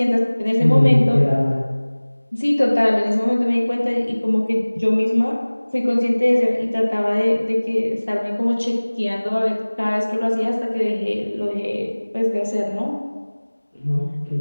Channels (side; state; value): both; inverted; correlation -1.00